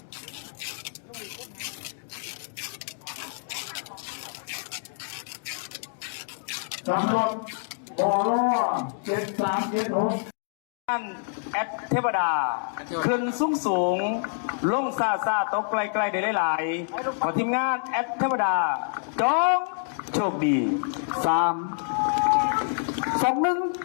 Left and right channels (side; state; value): right; silent; digital silence